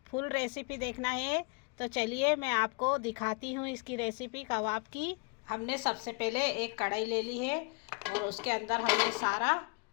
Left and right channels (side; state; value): right; quieter; 32.6 dB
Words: फुल रेसिपी देखना है तो चलिए मैं आपको दिखाती हूँ इसकी रेसिपी कबाब की। हमने सबसे पहले एक कढ़ाई ले ली है और उसके अंदर हम ये सारा